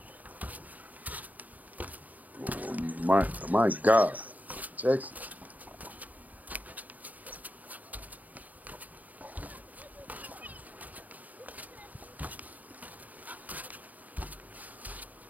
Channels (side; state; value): left; late; 0.077 ms